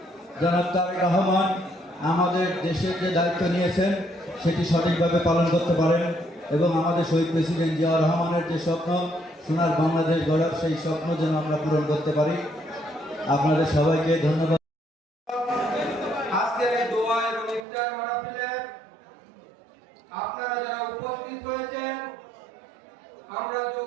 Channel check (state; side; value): drops out; left; at 17.7 s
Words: জনাব তারেক রহমান আমাদের দেশের যে দায়িত্ব নিয়েছেন সেটি সঠিকভাবে পালন করতে পারেন এবং আমাদের শহীদ প্রেসিডেন্ট জিয়া রহমানের যে স্বপ্ন সোনার বাংলাদেশ গড়ার সেই স্বপ্ন যেন আমরা পূরণ করতে পারি। আপনাদের সবাইকে ধন্যবাদ। আজকের এই দোয়া এবং ইফতার মাহফিলে আপনারা যারা উপস্থিত হয়েছেন, আমরা